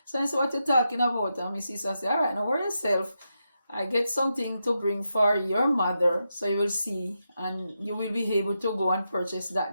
So that's what you're talking about. And my sister said, all right, now worry yourself. I get something to bring for your mother, so you will see, and you will be able to go and purchase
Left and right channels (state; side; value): inverted; both; correlation -0.86